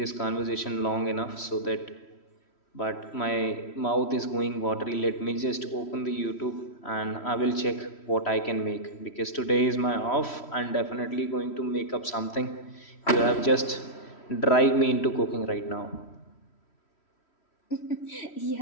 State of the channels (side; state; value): right; late; 3.1 ms